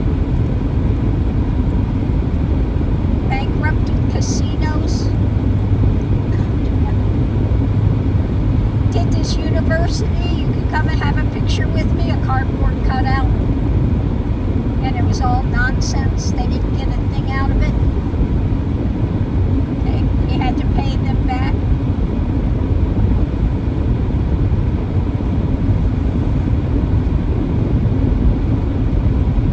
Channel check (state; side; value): identical; both; correlation 1.00